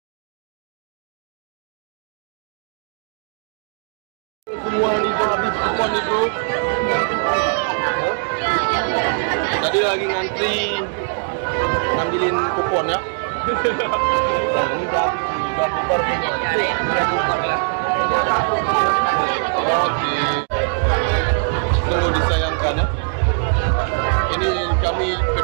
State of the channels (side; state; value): left; silent; 65 dB below the other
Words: Semua ini habis kupon itu. Tadi lagi ngantri ngambilin kupon ya. Nah ini udah bubar semua. Oke. Sungguh disayangkan ya. Ini kami